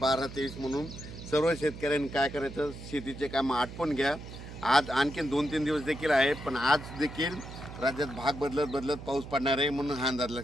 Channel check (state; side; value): noise; right; hum, 12 dB below the sound